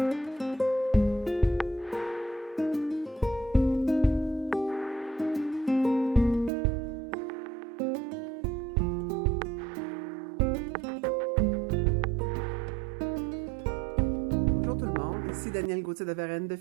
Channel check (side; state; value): left; drops out; at 6.5 s